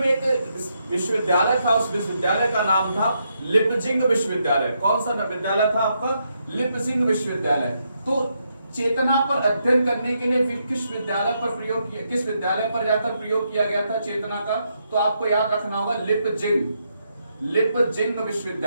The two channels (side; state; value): both; inverted; correlation -0.79